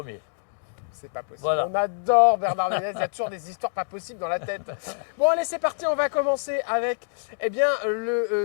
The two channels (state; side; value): silent; right; digital silence